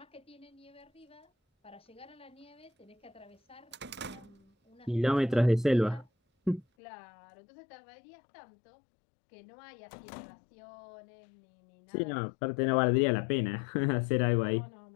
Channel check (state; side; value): drops out; right; at 6.7 s